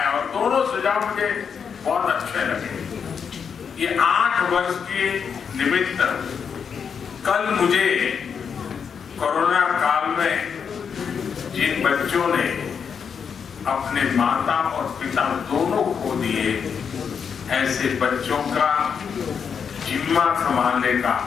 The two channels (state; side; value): quieter; right; 6.7 dB